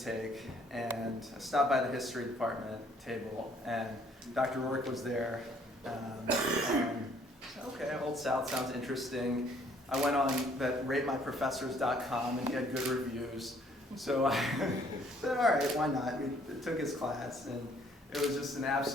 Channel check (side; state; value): both; normal; correlation 0.62